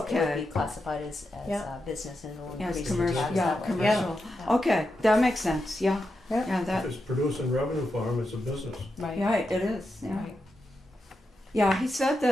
be classified as Yeah. business, and it'll Yeah, it's increase the commercial, tax yeah, that way. commercial. Yeah. Okay, that makes sense, yeah. Yeah. Yeah, If that, it's producing revenue for them, it's a business. Right. yeah, it is, yeah. Right. Yeah, he said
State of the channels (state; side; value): normal; both; correlation 0.87